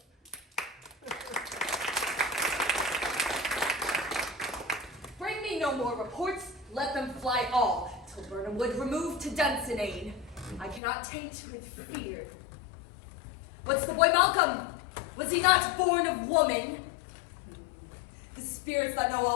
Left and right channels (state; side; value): drops out; right; at 10.8 s